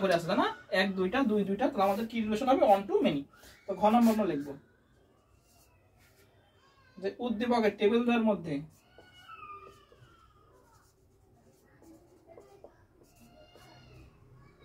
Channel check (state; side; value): identical; both; correlation 1.00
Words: করে আছে, তাই না? 1 2টা 2 2টা, তাহলে আমাদের কি রিলেশন হবে? One to many. তো ঘ নাম্বার আমরা লিখবো যে উদ্দীপকের টেবিলদের মধ্যে